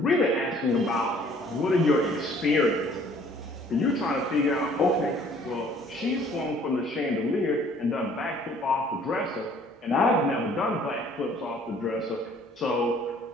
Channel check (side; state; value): both; normal; correlation 0.57